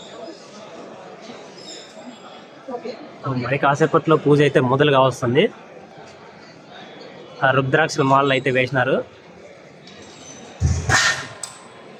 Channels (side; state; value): both; identical; correlation 1.00